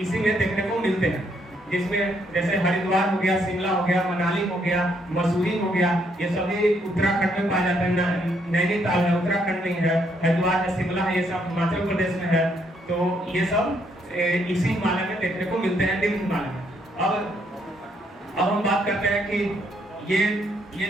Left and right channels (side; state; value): both; normal; correlation 0.72